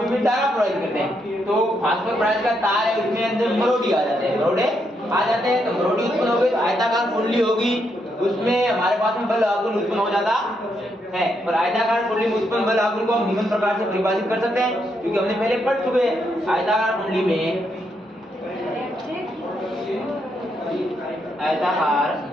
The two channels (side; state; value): both; normal; correlation 0.78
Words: में धारा प्रवाहित करते हैं तो फास्फोरस ब्रांच का तार है उसमें अंदर मरोड़ी आ जाते हैं, तो मरोड़ी उत्पन्न हो गई तो आयताकार कुंडली होगी उसमें हमारे पास में बल आघूर्ण उत्पन्न हो जाता है। और आयताकार कुंडली में उत्पन्न बल आघूर्ण को हम निम्न प्रकार से परिभाषित कर सकते हैं क्योंकि हमने पहले पढ़ चुके हैं। आयताकार कुंडली में